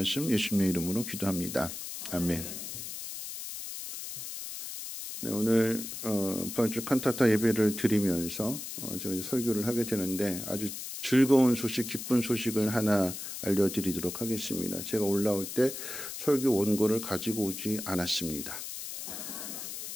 예수님의 이름으로 기도합니다. 아멘. 네, 오늘 부활절 칸타타 예배를 드리면서 제가 설교를 하게 되는데 아주 즐거운 소식, 기쁜 소식을 하나 알려드리도록 하겠습니다. 제가 올라올 때 설교 원고를 가지고 오지 않았습니다.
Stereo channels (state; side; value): noise; left; hiss, 8 dB below the sound